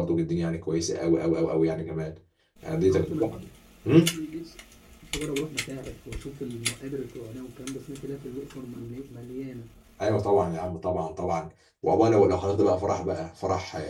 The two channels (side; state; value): both; identical; correlation 1.00